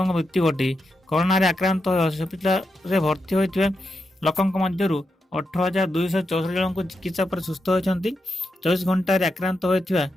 मृत्यु घटी। कोरोना रे आक्रांत हस्पिटाल भर्ती होता लोकों मध्य 18,264 जन को चिकित्सा पर सुस्थ होती। 24 घंटा आक्रांत होता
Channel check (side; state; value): both; normal; correlation 0.86